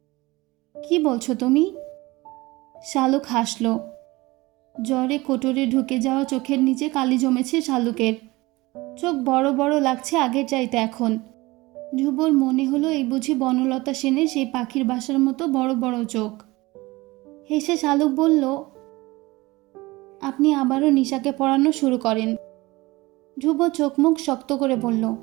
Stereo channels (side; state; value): left; quieter; 21.0 dB